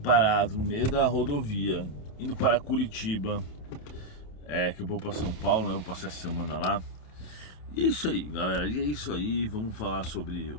no meio da rodovia, indo para Curitiba, que eu vou para São Paulo, né? Vou passar essa semana lá. E é isso aí, galera, e é isso aí. Vamos falar sobre o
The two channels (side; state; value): right; late; 27 ms